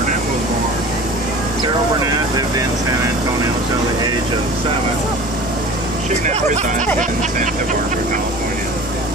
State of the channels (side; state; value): both; normal; correlation 0.39